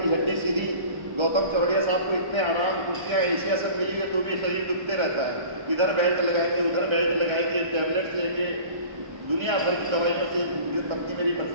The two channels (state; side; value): late; left; 1.3 ms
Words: की हड्डी सीधी। गौतम चौड़िया साहब को इतने आराम कुर्सियाँ एशिया सब मिली है तो भी शरीर दुखते रहता है। इधर बेल्ट लगाएंगे, उधर बेल्ट लगाएंगे, टैबलेट्स लेंगे, दुनिया भर की दवाइयों से पत्नी मेरी